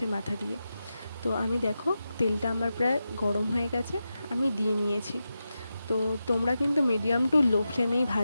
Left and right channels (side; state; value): both; inverted; correlation -0.90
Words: মাথা দিয়ে। তো আমি দেখো তেলটা আমার প্রায় গরম হয়ে গেছে, আমি দিয়ে নিয়েছি। তো তোমরা কিন্তু মিডিয়াম টু লো ফ্লেমেই